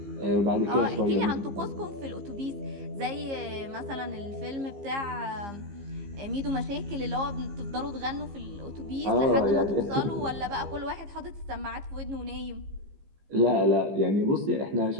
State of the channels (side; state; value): left; late; 15 ms